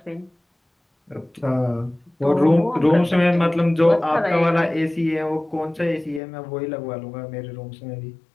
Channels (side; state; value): right; drops out; at 6.2 s